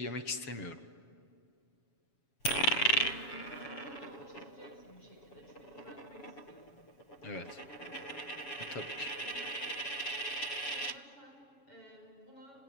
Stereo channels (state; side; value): late; right; 7.2 ms